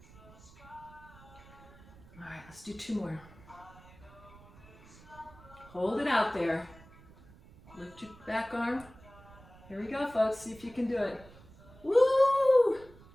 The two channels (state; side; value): noise; right; rumble, 22 dB below the sound